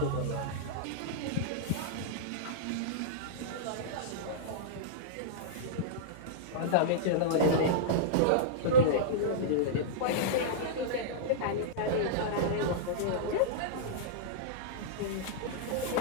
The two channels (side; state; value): both; different; correlation -0.03